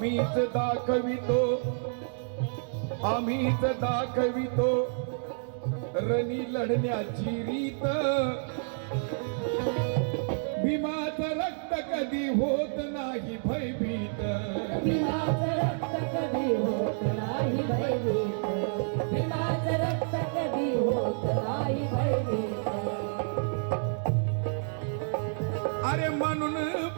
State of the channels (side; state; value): left; silent; digital silence